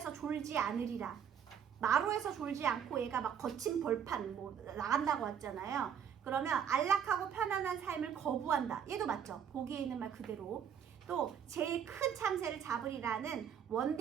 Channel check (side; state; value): left; quieter; 8.2 dB